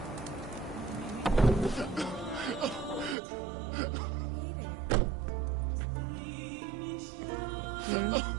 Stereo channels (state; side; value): drops out; left; at 3.2 s